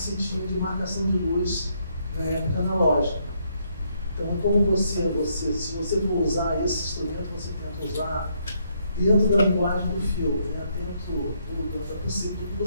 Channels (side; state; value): both; inverted; correlation -0.73